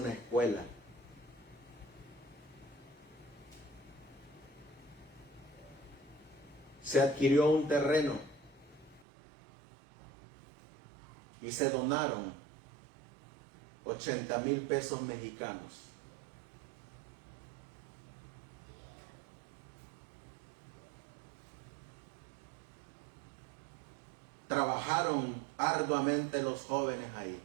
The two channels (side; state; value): left; drops out; at 9.1 s